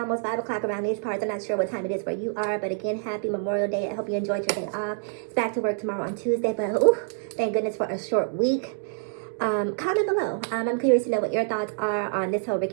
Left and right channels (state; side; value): silent; left; 58 dB below the other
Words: 5 o'clock around these parts. I'm not sure what time it is where you are, but again, happy Memorial Day. I hope you enjoyed your day off. It's back to work tomorrow on Tuesday, but thank goodness for a short week. Comment below. I'm curious to know what your thoughts are on this whole